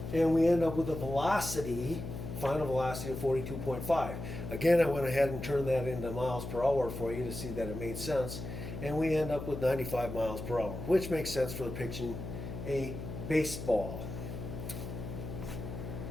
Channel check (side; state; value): left; noise; hum, 7 dB below the sound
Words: And we end up with a velocity, final velocity of 42.5. Again, I went ahead and turned that into miles per hour for you to see that it made sense. And we end up with 95 miles per hour, which makes sense for depicting a baseball.